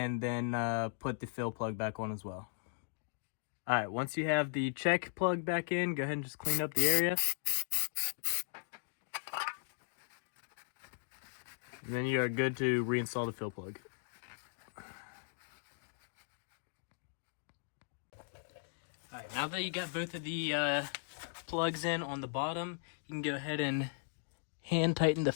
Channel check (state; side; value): silent; right; digital silence